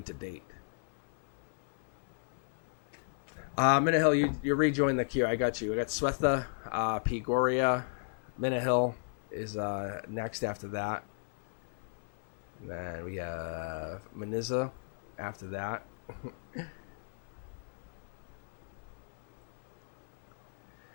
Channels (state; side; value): silent; right; 54 dB below the other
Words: to date. Minahill, you rejoin the queue. I got you. I got Swetha, P. Goria. Minahill is next after that. And then we have Maniza after that.